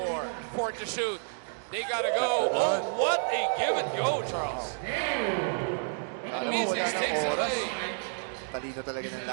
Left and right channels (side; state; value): left; silent; 58 dB below the other